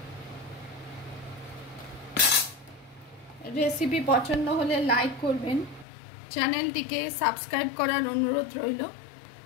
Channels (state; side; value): drops out; right; at 5.9 s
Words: রেসিপি পছন্দ হলে লাইক করবেন, চ্যানেলটিকে সাবস্ক্রাইব করার অনুরোধ রইল।